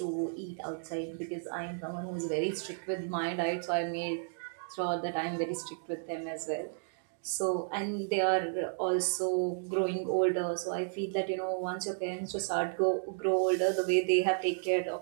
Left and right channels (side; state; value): left; silent; digital silence